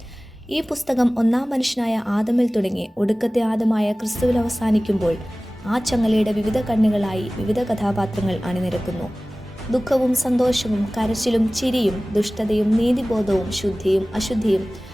ഈ പുസ്തകം ഒന്നാം മനുഷ്യനായ ആദമിൽ തുടങ്ങി ഒടുക്കത്തെ ആദമായ ക്രിസ്തുവിൽ അവസാനിക്കുമ്പോൾ ആ ചങ്ങലയുടെ വിവിധ കണ്ണുകളായി വിവിധ കഥാപാത്രങ്ങൾ അണിനിരക്കുന്നു. ദുഃഖവും സന്തോഷവും കരച്ചിലും ചിരിയും ദുഷ്ടതയും നീതിബോധവും ശുദ്ധിയും അശുദ്ധിയും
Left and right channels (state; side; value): normal; both; correlation 0.98